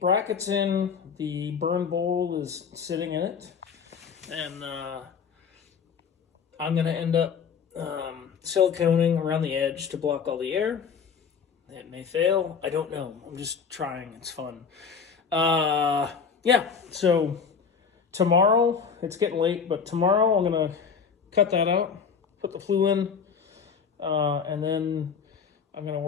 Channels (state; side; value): quieter; right; 6.2 dB